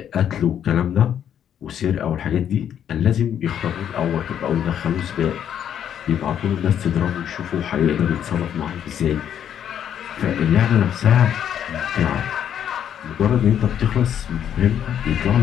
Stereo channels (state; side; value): quieter; right; 9.4 dB